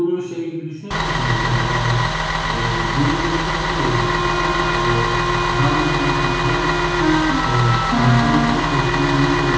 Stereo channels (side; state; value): both; identical; correlation 1.00